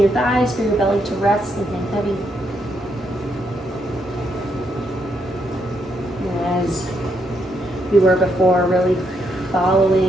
thighs for your belly to rest and hang heavy. And as we were before, really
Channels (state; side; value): normal; both; correlation 0.77